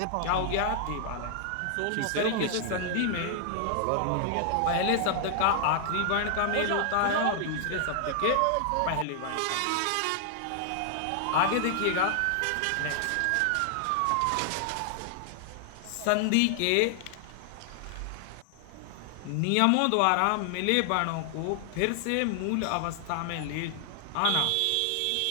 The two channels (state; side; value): different; both; correlation 0.00